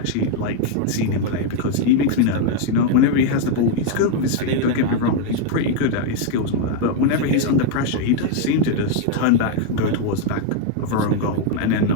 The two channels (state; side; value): different; both; correlation 0.00